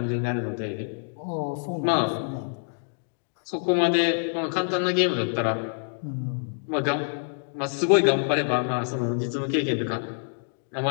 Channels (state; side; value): silent; right; digital silence